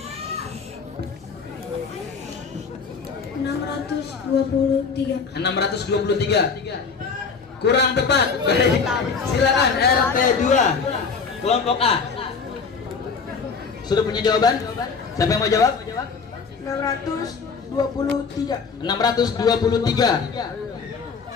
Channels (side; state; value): right; quieter; 5.3 dB